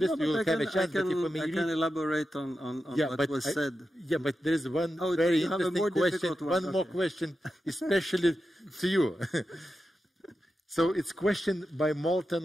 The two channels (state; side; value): normal; both; correlation 0.90